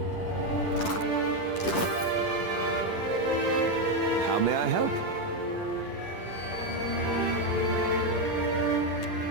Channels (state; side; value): late; right; 10 ms